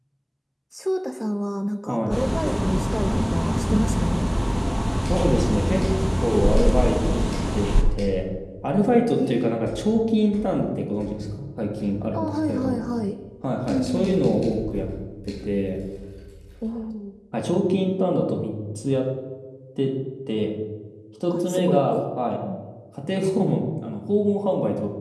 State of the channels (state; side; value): identical; both; correlation 1.00